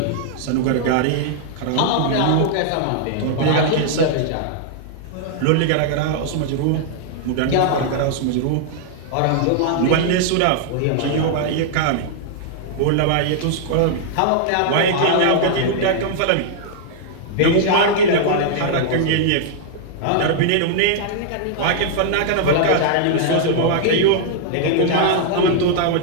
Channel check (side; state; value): both; different; correlation -0.01